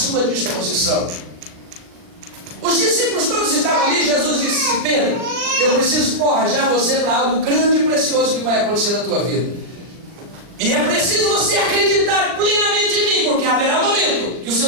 disposição. Os discípulos todos estavam ali. Jesus disse: Pedro, eu preciso forjar você para algo grande e precioso que vai acontecer na tua vida. E é preciso você acreditar plenamente em mim, porque haverá um momento que os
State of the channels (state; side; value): late; left; 39 ms